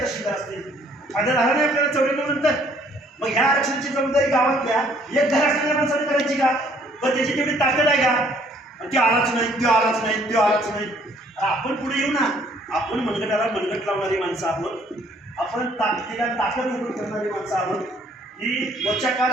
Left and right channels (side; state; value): both; normal; correlation 0.62